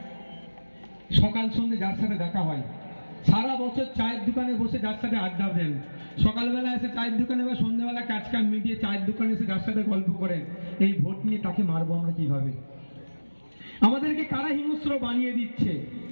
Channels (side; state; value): both; inverted; correlation -1.00